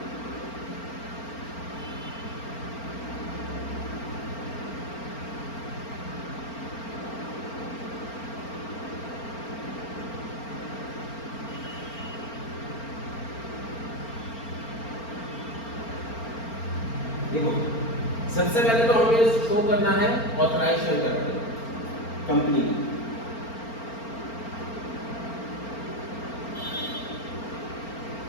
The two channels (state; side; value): late; right; 4.4 ms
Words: देखो सबसे पहले तो हमें शो करना है ऑथराइज्ड शेयर कैपिटल कंपनी की।